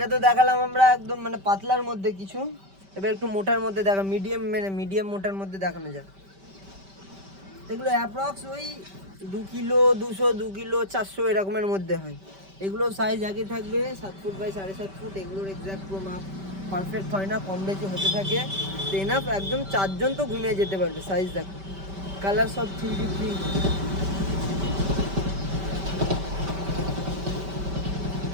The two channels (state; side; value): late; left; 5.1 ms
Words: তো দেখালাম আমরা একদম মানে পাতলার মধ্যে কিছু, এবার একটু মোটার মধ্যে দেখা, মিডিয়াম মোটার মধ্যে দেখানো যাক। এগুলো অ্যাপ্রক্স ওই 2 কিলো 200, 2 কিলো 400 এরকমের মধ্যে হয়। এগুলো সাইজ আগে থাকবে 7 ফুট বাই 7.5 ফুট। এগুলোর এক্সাক্ট মাপ পারফেক্ট হয় না, কম বেশি হতে থাকে। তো এনাফ একদম চারজন তো ঘুমিয়ে যেতে পারবে। সাইজ দেখো, কালার সব 3D প্রিন্ট।